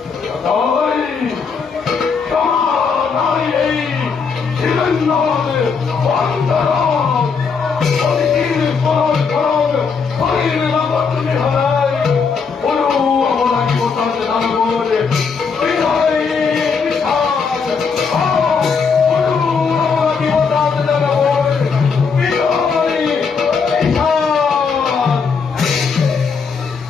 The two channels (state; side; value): quieter; right; 5.5 dB